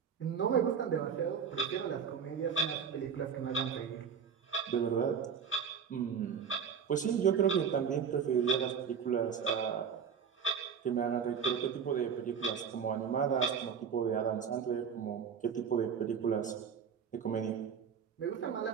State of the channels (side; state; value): left; quieter; 6.9 dB